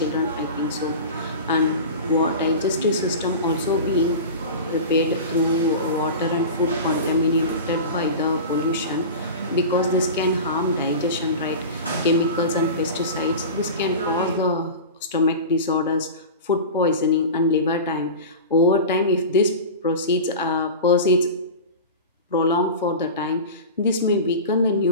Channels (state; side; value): inverted; both; correlation -0.30